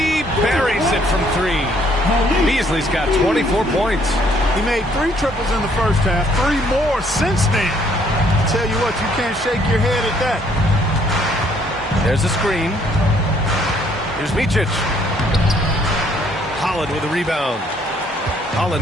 buries it from 3. Beasley's got 24 points. He made 3 triples in the first half, 3 more since then. I tell you what, you can't shake your head at that. There's a screen. Here's Micic. Holland with a rebound.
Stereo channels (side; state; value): both; normal; correlation 0.65